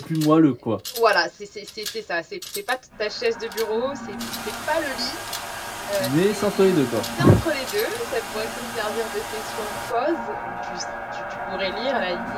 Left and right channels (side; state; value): both; identical; correlation 1.00